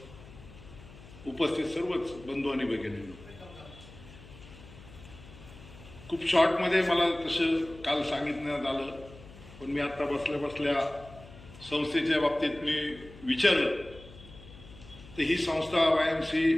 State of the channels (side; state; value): left; noise; hum, 19 dB below the sound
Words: उपस्थित सर्वच बंधू आणि भगिनींनो, खूप शॉर्टमध्ये मला तसं काल सांगितण्यात आलं, पण मी आता बसल्या बसल्या संस्थेच्या बाबतीत मी विचारलं तर ही संस्था